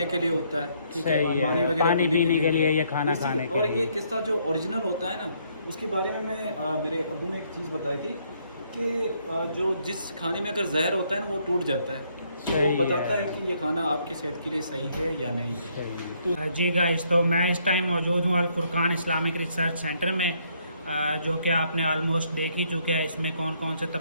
کے لیے ہوتا ہے، ٹھیک ہے، صحیح ہے، پانی وغیرہ پانی پینے کے لیے یا کھانا اسی- کھانے کے اور لیے۔ یہ قصہ جو اوریجنل ہوتا ہے نا، اس کے بارے میں میرے ابو نے ایک چیز بتائی تھی کہ جو جس کھانے میں اگر زہر ہوتا ہے نا وہ ٹوٹ جاتا ہے، تو وہ صحیح بتاتا ہے ہے کہ یہ کھانا آپ کی صحت کے لیے صحیح ہے یا نہیں ہے۔ تو جی گائز، تو میں اس ٹائم موجود ہوں الفرقان اسلامک ریسرچ سینٹر میں، جو کہ آپ نے آلموسٹ دیکھ ہی چکے ہیں۔ اس میں کون کون سے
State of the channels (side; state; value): both; inverted; correlation -0.70